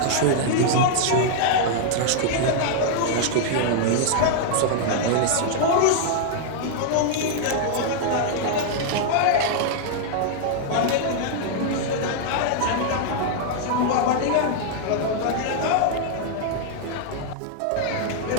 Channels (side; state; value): both; different; correlation -0.01